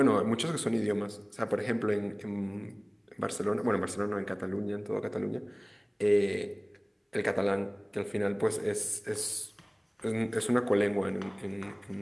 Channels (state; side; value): identical; both; correlation 1.00